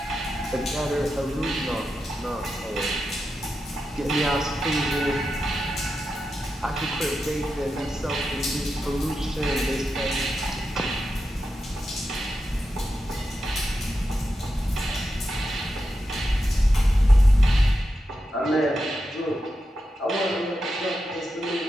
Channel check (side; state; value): both; normal; correlation 0.89